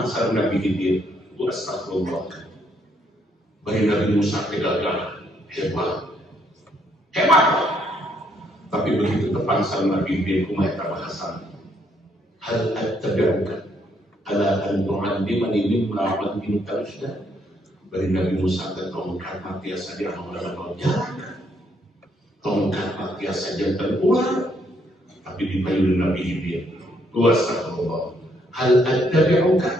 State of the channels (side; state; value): both; normal; correlation 0.71